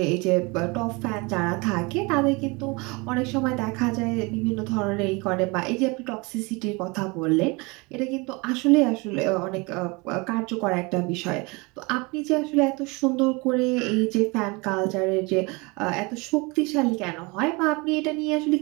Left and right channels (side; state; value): left; quieter; 27.0 dB